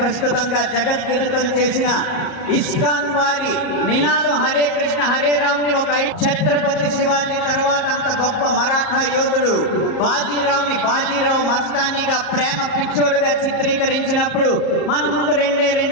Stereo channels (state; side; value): late; right; 38 ms